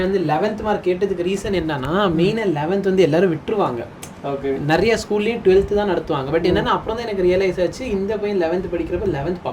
வந்து 11th மார்க் கேட்டதுக்கு ரீசன் என்னன்னா, மெயினாக 11th வந்து எல்லாரும் விட்டுருவாங்க. நிறைய ஸ்கூல்லையும் 12th தான் நடத்துவாங்க. பட் என்னன்னா அப்புறம் தான் எனக்கு ரியலைஸ் ஆச்சு, இந்த பையன் 11th படிக்கிறப்ப 11th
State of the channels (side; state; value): both; identical; correlation 1.00